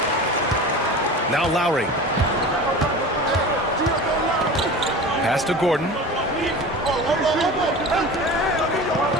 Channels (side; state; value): both; normal; correlation 0.34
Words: Now Lowry. Pass to Gordon.